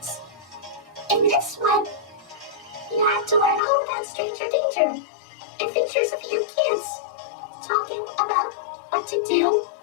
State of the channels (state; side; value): drops out; right; at 3.6 s